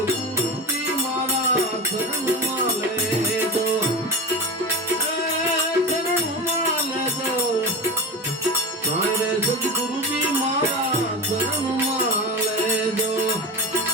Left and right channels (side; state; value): both; normal; correlation 0.24